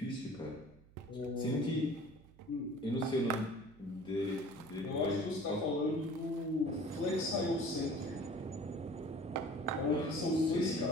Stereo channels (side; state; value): right; noise; hum, 25 dB below the sound